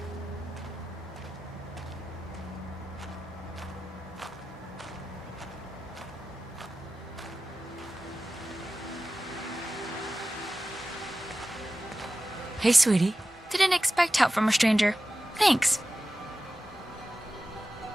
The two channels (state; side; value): normal; both; correlation 0.94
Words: Hey, sweetie. Didn't expect help from a stranger. Thanks.